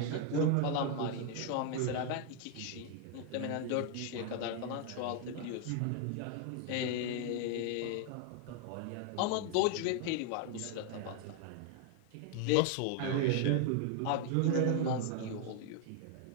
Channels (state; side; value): different; both; correlation 0.00